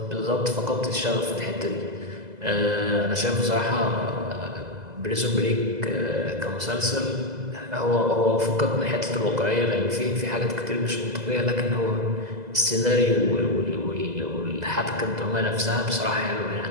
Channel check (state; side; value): late; left; 2.0 ms